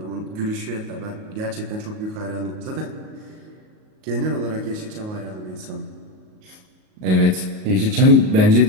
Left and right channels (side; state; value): left; late; 38 ms